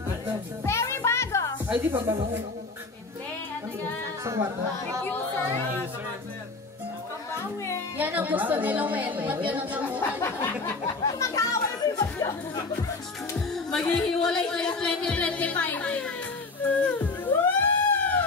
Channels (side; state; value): right; quieter; 3.7 dB